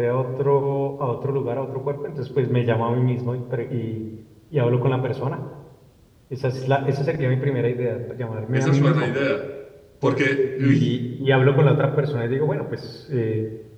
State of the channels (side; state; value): both; identical; correlation 1.00